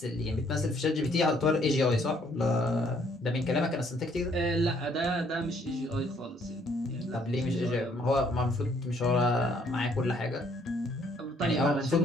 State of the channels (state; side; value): normal; both; correlation 0.65